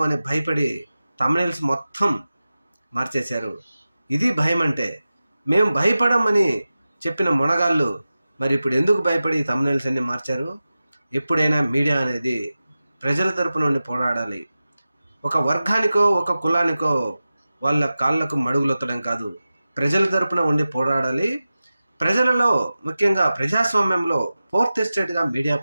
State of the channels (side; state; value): both; inverted; correlation -0.95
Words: అని భయపడి థంబ్నెయిల్స్ మొత్తం మార్చేశారు. ఇది భయం అంటే. మేము భయపడమని చెప్పిన మునగాళ్ళు మరి ఇప్పుడు ఎందుకు భయపడి థంబ్నెయిల్స్ అన్ని మార్చారు? ఎప్పుడైనా మీడియా అనేది ప్రజల తరపు నుండి పోరాడాలి. ఒక వర్గానికో ఒక కులానికో వాళ్ళ కాళ్ళకు మడుగులొత్తడం కాదు, ప్రజల తరపున ఉండి పోరాడాలి. ప్రజలలో ముఖ్యంగా ప్రజాస్వామ్యంలో ఫోర్త్ ఎస్టేట్గా మీడియా